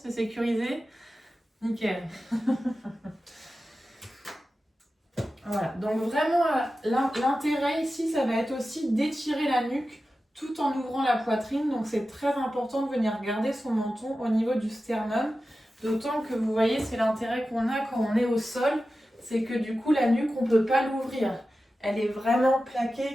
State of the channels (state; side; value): normal; both; correlation 0.93